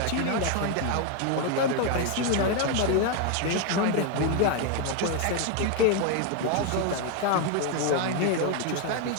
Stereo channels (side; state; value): both; different; correlation 0.01